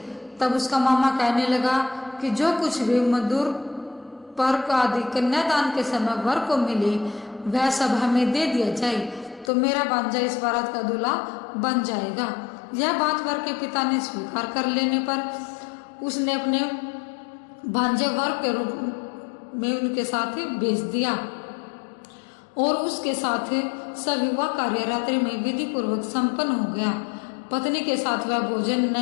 तब उसका मामा कहने लगा कि जो कुछ भी मधुर पर्क आदि कन्यादान के समय वर को मिले वह सब हमें दे दिया जाए, तो मेरा भांजा इस बारात का दूल्हा बन जाएगा। यह बात वर के पिता ने स्वीकार कर लेने पर उसने अपने भांजे वर के रूप में उनके साथ भेज दिया और उसके साथ सविवाह कार्य रात्रि में विधि पूर्वक संपन्न हो गया। पत्नी के साथ वह भोजन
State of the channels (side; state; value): right; drops out; at 9.5 s